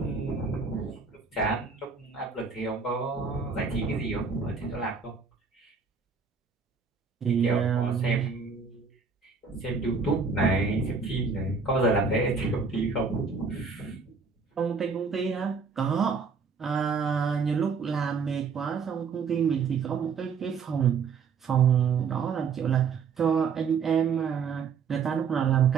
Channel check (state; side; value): quieter; left; 5.4 dB